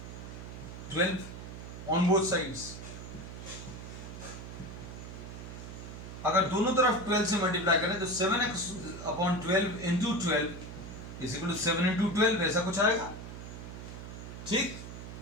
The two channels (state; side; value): noise; right; hum, 10 dB below the sound